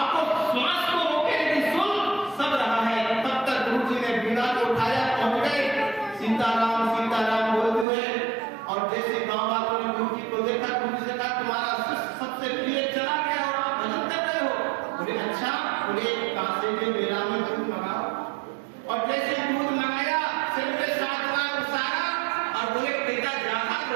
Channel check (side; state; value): left; drops out; at 7.9 s